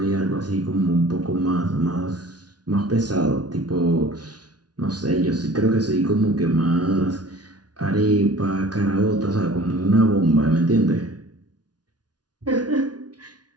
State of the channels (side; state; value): left; late; 0.69 ms